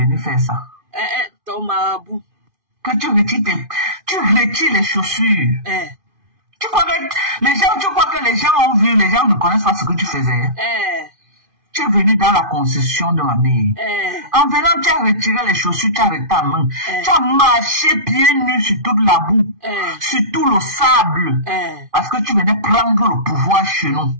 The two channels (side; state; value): left; late; 2.5 ms